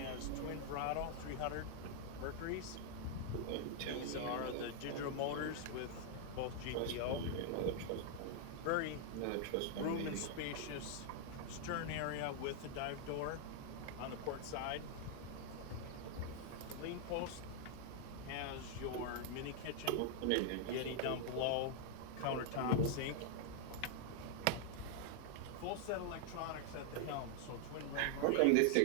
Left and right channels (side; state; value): both; different; correlation 0.00